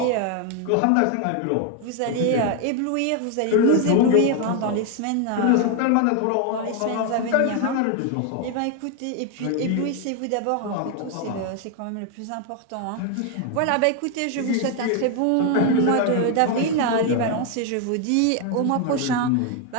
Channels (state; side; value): different; both; correlation 0.01